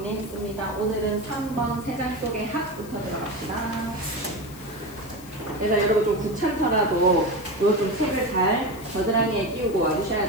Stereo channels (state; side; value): noise; left; hiss, 19 dB below the sound